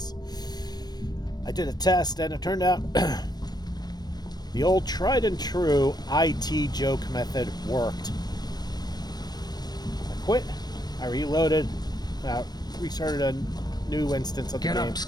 I did a test, and it turned out the old tried-and-true IT joke method worked. I quit, I reloaded, restarted a new instance of the game. Get up,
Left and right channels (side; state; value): right; late; 0.19 ms